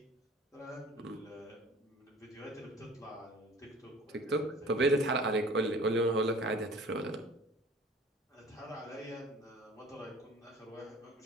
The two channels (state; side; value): normal; both; correlation 0.46